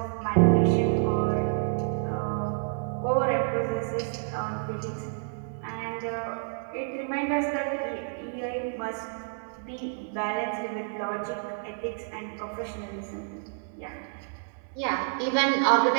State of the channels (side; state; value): left; silent; 59 dB below the other